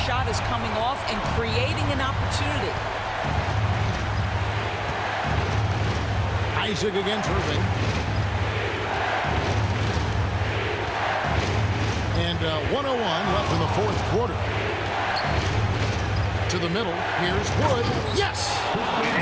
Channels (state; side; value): identical; both; correlation 1.00